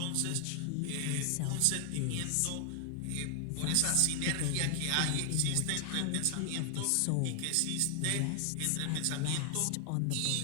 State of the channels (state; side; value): different; both; correlation 0.00